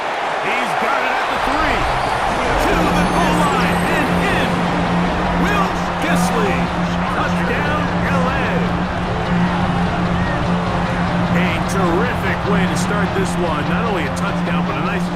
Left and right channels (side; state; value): both; identical; correlation 1.00